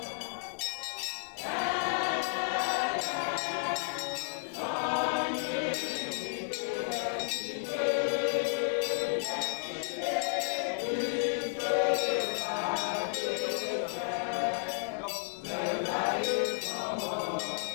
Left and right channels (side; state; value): right; silent; digital silence